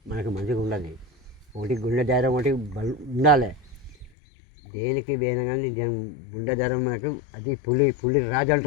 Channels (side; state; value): right; drops out; at 4.1 s